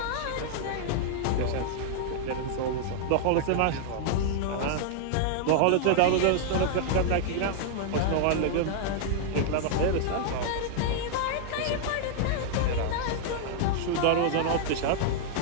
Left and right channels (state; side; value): different; both; correlation -0.01